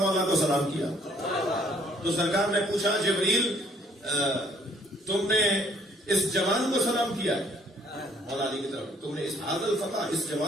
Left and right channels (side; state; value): both; normal; correlation 0.62